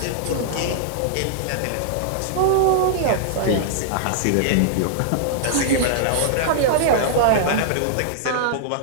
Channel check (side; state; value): both; different; correlation -0.01